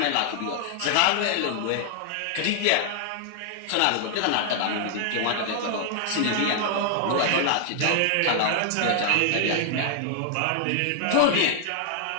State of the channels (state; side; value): different; both; correlation 0.00